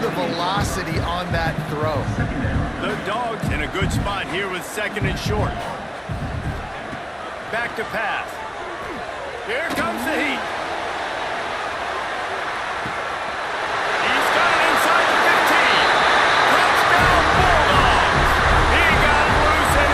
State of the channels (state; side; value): identical; both; correlation 1.00